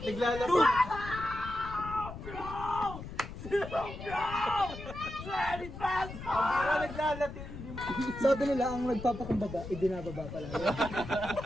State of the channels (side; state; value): left; noise; rumble, 10 dB below the sound